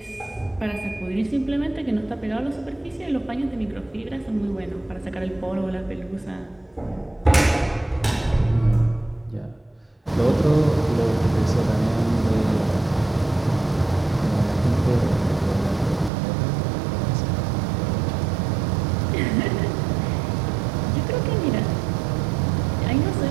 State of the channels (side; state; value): left; drops out; at 16.1 s